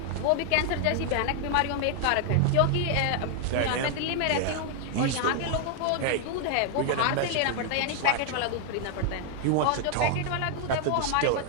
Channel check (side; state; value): both; different; correlation 0.00